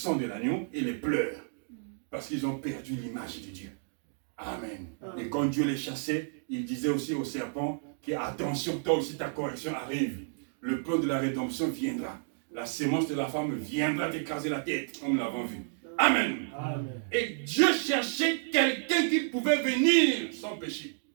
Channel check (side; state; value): left; silent; digital silence